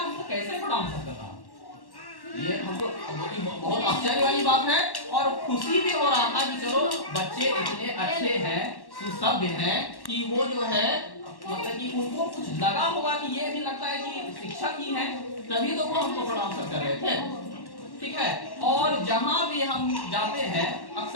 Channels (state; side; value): late; right; 1.1 ms